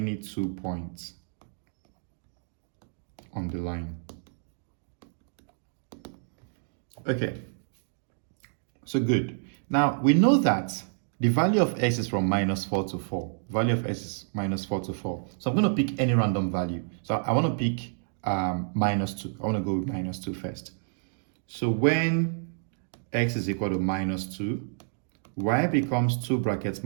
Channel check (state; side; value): silent; left; digital silence